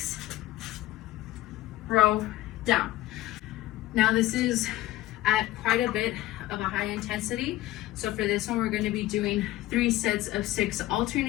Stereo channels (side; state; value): right; quieter; 15.9 dB